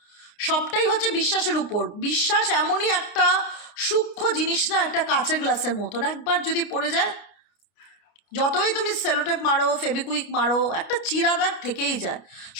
সবটাই হচ্ছে বিশ্বাসের উপর। বিশ্বাস এমনই একটা সূক্ষ্ম জিনিস না, একটা কাঁচের গ্লাসের মতন, একবার যদি পড়ে যায়, যতই তুমি সেলোটেপ মারো, ফেবিকুইক মারো, একটা চিরাদাগ থেকেই যায়।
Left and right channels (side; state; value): right; late; 29 ms